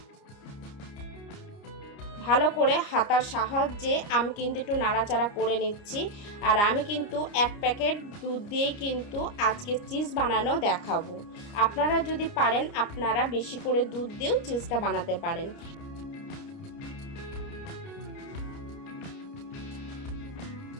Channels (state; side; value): late; right; 29 ms